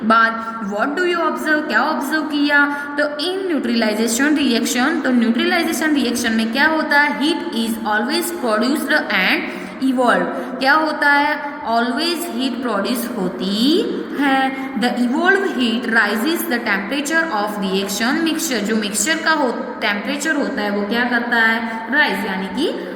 बाद। व्हाट डू यू ऑब्जर्व, क्या ऑब्जर्व किया, तो इन न्यूट्रलाइजेशन रिएक्शन, तो न्यूट्रलाइजेशन रिएक्शन में क्या होता है, heat is always produced and evolve. क्या होता है, ऑलवेज हीट प्रोड्यूस होती है। The evolve heat rises the temperature of reaction mixture. जो मिक्सचर का टेम्परेचर होता है वो क्या करता है, राइज यानी कि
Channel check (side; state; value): both; identical; correlation 1.00